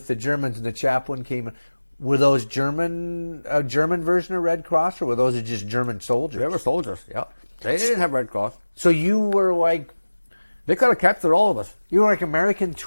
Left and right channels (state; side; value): inverted; both; correlation -1.00